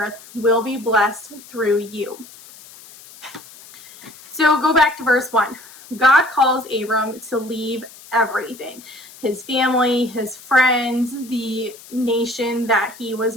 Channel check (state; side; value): noise; left; hiss, 20 dB below the sound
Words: will be blessed through you." So go back to verse 1. God calls Abram to leave everything. His family, his friends, the nation that he